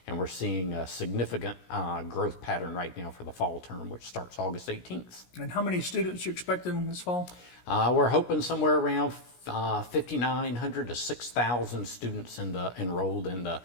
And we're seeing a significant growth pattern right now for the fall term, which starts August 18th. And how many students are you expecting this fall? We're hoping somewhere around 5,900 to 6,000 students enrolled in the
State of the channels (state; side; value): late; right; 17 ms